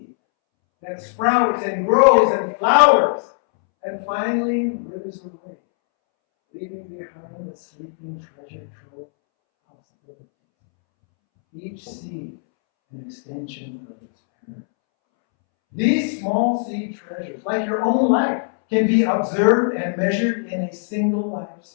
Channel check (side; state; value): right; silent; 65 dB below the other